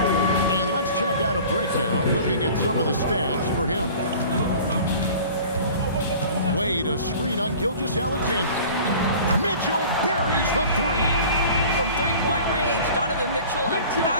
And let's check out a breakdown looking at some of the stats for him. Wade, a screen on Gilgeous-Alexander. Mitchell buries the three. From three-point range, Donovan Mitchell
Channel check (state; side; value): inverted; both; correlation -0.43